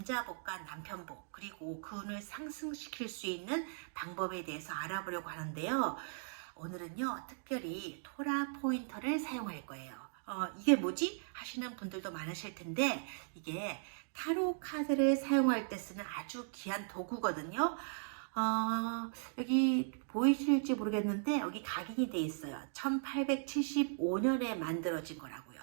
남편복, 그리고 그 운을 상승시킬 수 있는 방법에 대해서 알아보려고 하는데요. 오늘은요, 특별히 토라 포인터를 사용할 거예요. 이게 뭐지? 하시는 분들도 많으실 텐데, 이게 타로 카드를 사용할 때 쓰는 아주 귀한 도구거든요. 여기 보이실지 모르겠는데 여기 각인이 돼 있어요. 1875년에 만들어진 거라고요.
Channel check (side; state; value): left; silent; digital silence